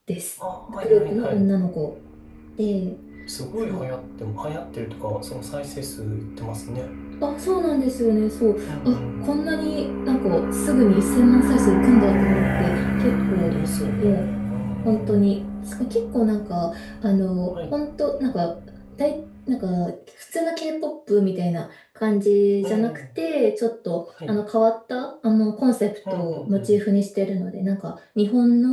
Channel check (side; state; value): both; identical; correlation 1.00